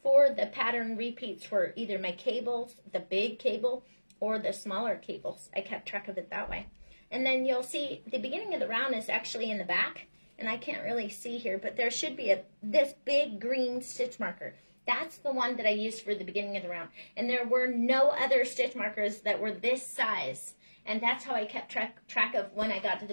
for the pattern repeats for either my cables, the big cable, or the smaller cables. I kept track of it that way. And then you'll see the beginning of the round is actually in the back, and I can't really see here, but there should be this big green stitch marker. That's the one that I used for the beginning of the round. And there were no other stitch markers that were this size. And that's how I kept track of when I got to the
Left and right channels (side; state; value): both; inverted; correlation -1.00